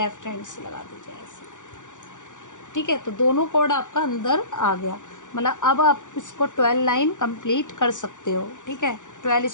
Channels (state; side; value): late; right; 0.86 ms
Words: हैंड से लगा दीजिए ऐसे। ठीक है, तो दोनों कॉर्ड आपका अंदर आ गया, मतलब अब आप इसको 12 लाइन कंप्लीट कर सकते हो। ठीक है, 12